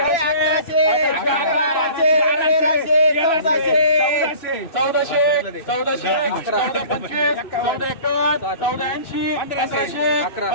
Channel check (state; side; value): late; right; 2.6 ms